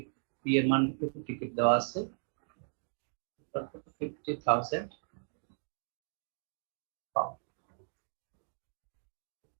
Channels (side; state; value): left; silent; digital silence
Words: পি এর মান 50 টিকিট দেওয়া আছে 50,000 পাউন্ড